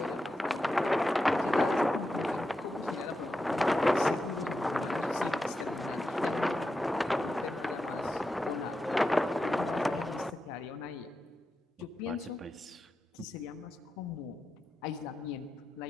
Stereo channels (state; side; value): normal; both; correlation 0.89